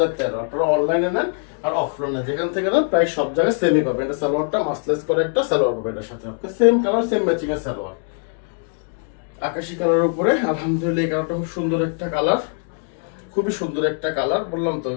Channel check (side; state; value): right; silent; 56 dB below the other